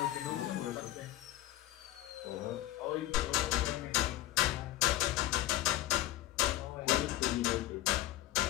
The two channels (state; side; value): quieter; right; 14.8 dB